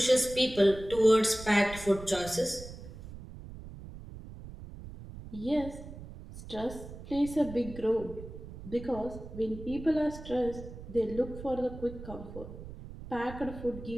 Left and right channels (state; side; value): noise; right; rumble, 13 dB below the sound